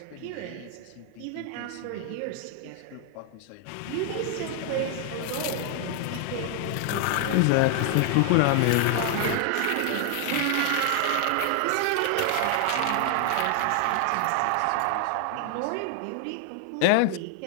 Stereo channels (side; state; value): both; different; correlation 0.00